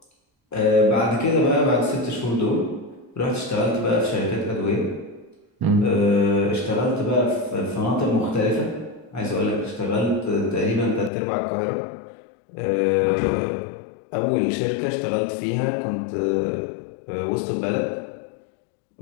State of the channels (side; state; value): right; drops out; at 11.1 s